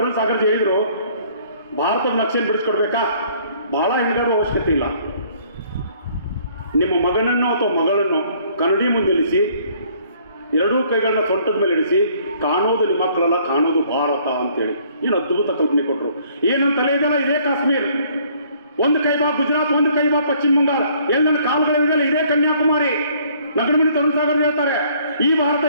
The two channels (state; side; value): inverted; both; correlation -0.60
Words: ಸಾಗರ್ಜಿ ಹೇಳಿದ್ರು, ಭಾರತದ ನಕ್ಷೆಯನ್ನು ಬಿಡಿಸ್ಕೊಡ್ಬೇಕಾ, ಬಹಳ ಹೆಣಗಾಡುವ ಅವಶ್ಯಕತೆ ಇಲ್ಲ. ನಿಮ್ಮ ಮಗನನ್ನು ಅಥವಾ ಮಗಳನ್ನು ಕನ್ನಡಿ ಮುಂದೆ ಇಳಿಸಿ, ಎರಡೂ ಕೈಗಳನ್ನ ಸೊಂಟದ ಮೇಲೆ ಇಳಿಸಿ, ಕಾಣೋದು ನಿಮ್ಮ ಮಕ್ಕಳಲ್ಲ, ಕಾಣೋದು ಭಾರತ ಅಂತೇಳಿ ಏನು ಅದ್ಭುತ ಕಲ್ಪನೆ ಕೊಟ್ಟರು. ಏನಂತ ತಲೆ ಇದೆಯಲ್ಲ, ಇದೇ ಕಾಶ್ಮೀರ್, ಒಂದು ಕೈ ಬಾ ಗುಜರಾತ್, ಒಂದು ಕೈ ಬಾ ಪಶ್ಚಿಮ ಬಂಗಾಳ, ಎಲ್ಲೆಲ್ಲ ಕಾಲುಗಳಿದೆಯಲ್ಲ ಇದೇ ಕನ್ಯಾಕುಮಾರಿ. ನಗರಮಣಿ ತರುಣ್ ಸಾಗರ್ ಹೇಳ್ತಾರೆ, ಈ ಭಾರತ